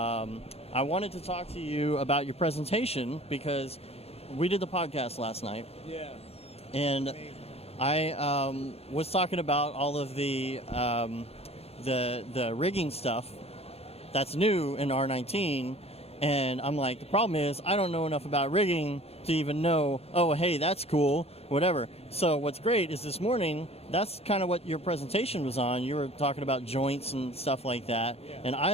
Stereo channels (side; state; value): right; late; 0.29 ms